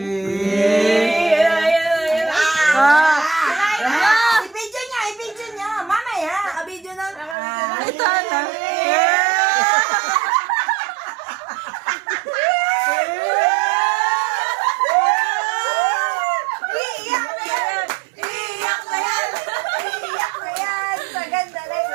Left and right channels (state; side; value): drops out; left; at 7.4 s